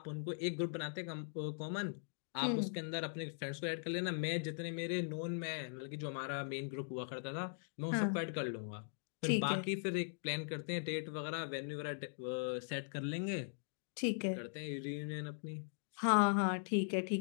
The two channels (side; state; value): right; silent; digital silence